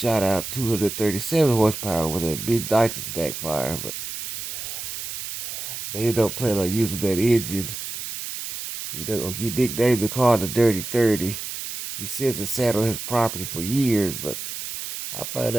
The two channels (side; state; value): right; noise; hiss, 7 dB below the sound